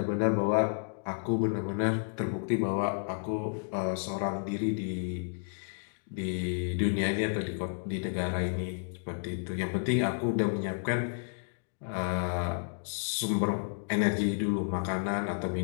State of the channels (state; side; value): silent; right; digital silence